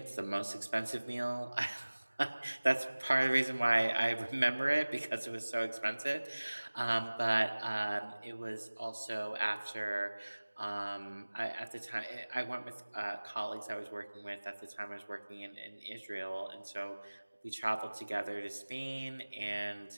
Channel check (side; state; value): both; inverted; correlation -1.00